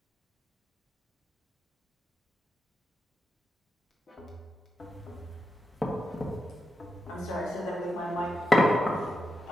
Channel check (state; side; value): normal; both; correlation 0.87